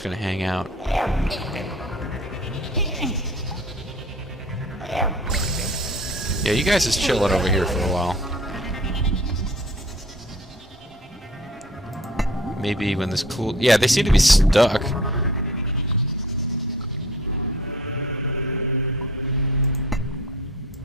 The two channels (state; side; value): normal; both; correlation 0.48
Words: gonna hang out? Yeah, you guys just chill it over here for a while. Maybe when this cool... Yeah, they seem to be stuck.